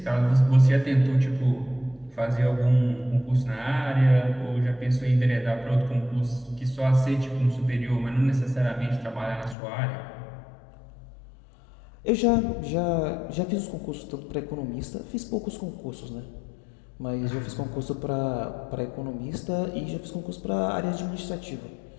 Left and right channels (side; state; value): right; drops out; at 9.6 s